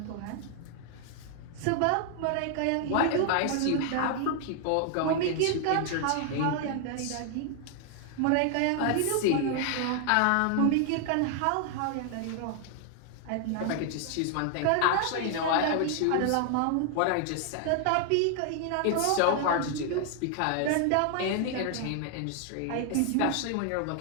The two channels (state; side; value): different; both; correlation 0.00